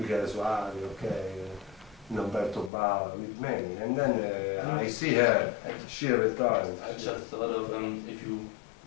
Soavi, okay, Umberto Bava, with many. And then I see her, she retired. I just thought of if you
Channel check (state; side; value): drops out; right; at 2.7 s